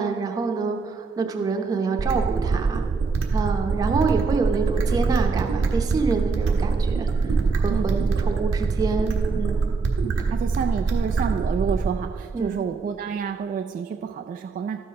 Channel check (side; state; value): left; quieter; 4.4 dB